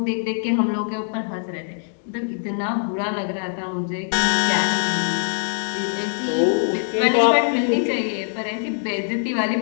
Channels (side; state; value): right; silent; digital silence